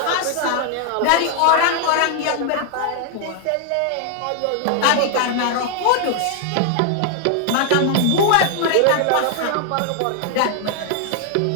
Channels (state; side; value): different; both; correlation 0.00